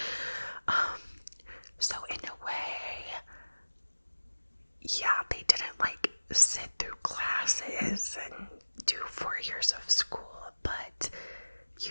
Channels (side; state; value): both; inverted; correlation -1.00